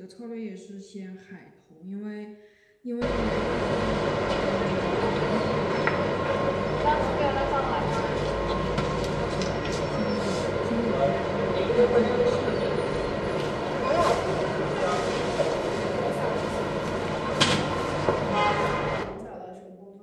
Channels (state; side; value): identical; both; correlation 1.00